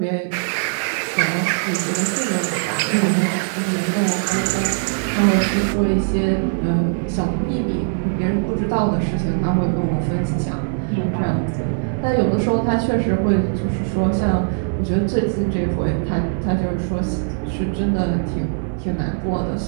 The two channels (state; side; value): silent; left; digital silence